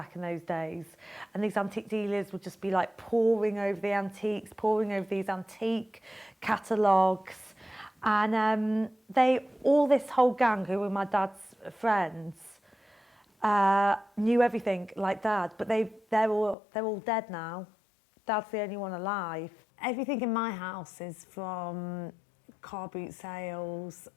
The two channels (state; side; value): drops out; right; at 16.6 s